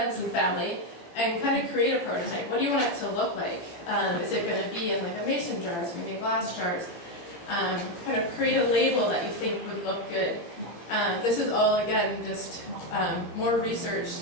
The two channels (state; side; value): late; right; 18 ms